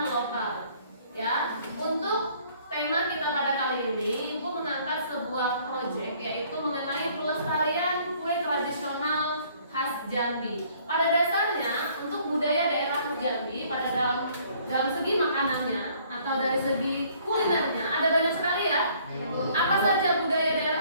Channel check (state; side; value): inverted; both; correlation -0.60